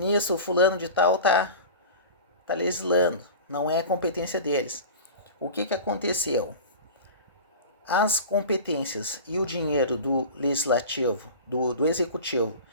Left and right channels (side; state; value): both; inverted; correlation -0.34